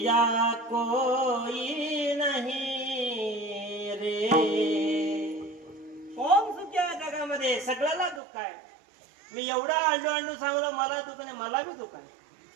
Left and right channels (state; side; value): drops out; left; at 8.2 s